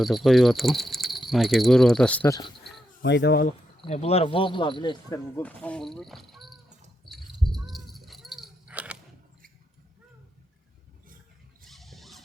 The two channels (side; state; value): both; normal; correlation 0.83